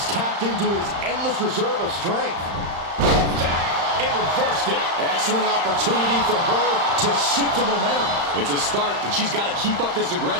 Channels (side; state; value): left; late; 35 ms